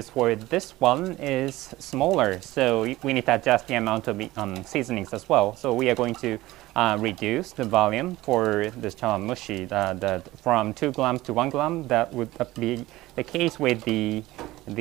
for this one is smaller, so we need to adjust the amount of seasonings as well. So we are going to reduce the volume for this chawanmushi from 2 grams to 1 gram. That would be the case with the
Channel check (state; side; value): quieter; left; 17.7 dB